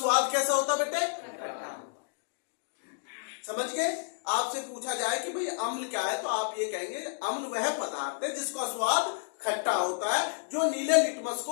कैसा होता बेटे? खट्टा। समझ गए? आपसे पूछा जाए कि भाई अम्ल क्या है तो आप ये कहेंगे अम्ल वह पदार्थ है जिसका स्वाद खट्टा होता है, जो नीले लिटमस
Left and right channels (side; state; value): right; silent; digital silence